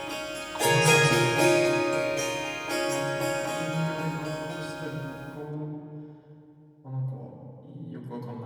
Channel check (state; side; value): identical; both; correlation 1.00